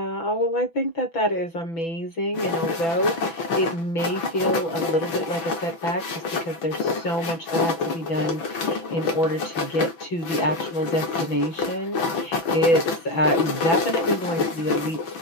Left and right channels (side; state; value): right; late; 6.1 ms